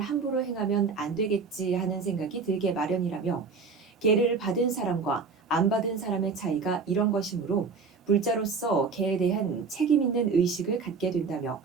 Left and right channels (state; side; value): quieter; left; 4.9 dB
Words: 함부로 행하면 안 되겠지 하는 생각이 들게 마련이라며, 계를 받은 사람과 안 받은 사람의 차이가 이런 것이므로 불자로서 계에 대한 책임 있는 의식을 갖게 된다며